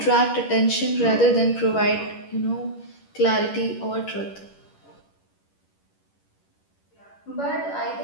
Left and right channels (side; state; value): right; late; 11 ms